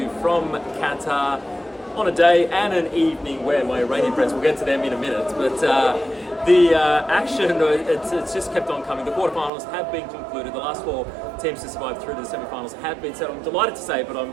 from Qatar on a day and an evening where my Iranian friends, we'll get to them in a minute, but the action, it's just kept on coming. The quarterfinals have been concluded. The last four teams to survive through to the semi-finals have been set. I'm delighted to say, but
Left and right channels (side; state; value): left; drops out; at 9.5 s